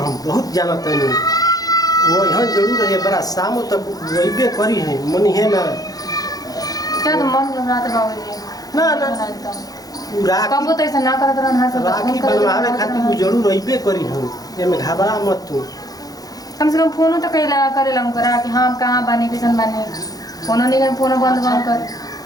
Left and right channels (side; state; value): right; late; 0.18 ms